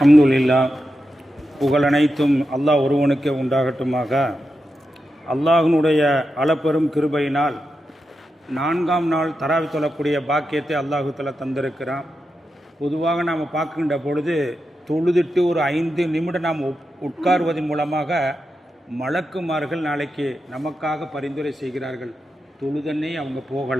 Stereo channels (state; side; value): normal; both; correlation 0.88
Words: அல்ஹம்துலில்லாஹ், புகழனைத்தும் அல்லாஹ் ஒருவனுக்கே உண்டாகட்டுமாக. அல்லாஹினுடைய அளப்பெரும் கிருபையினால் 4ஆம் நாள் தராவி தொழக்கூடிய பாக்கியத்தை அல்லாஹு தஆலா தந்திருக்கிறான். பொதுவாக நாம் பார்க்கின்ற பொழுது தொழுதுட்டு ஒரு 5 நிமிடம் நாம் உட்காருவதன் மூலமாக மலக்குமார்கள் நாளைக்கு நமக்காக பரிந்துரை செய்கிறார்கள். தொழுதன்னே அவங்க